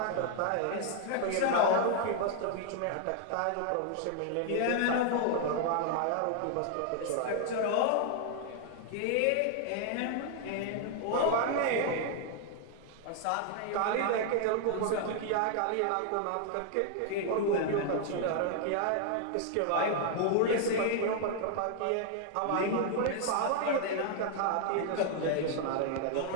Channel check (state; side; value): different; both; correlation 0.00